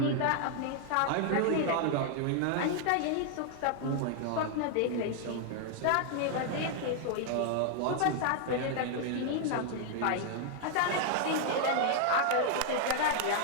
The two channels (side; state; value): both; different; correlation 0.00